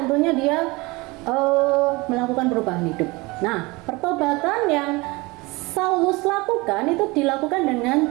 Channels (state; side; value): quieter; left; 23.9 dB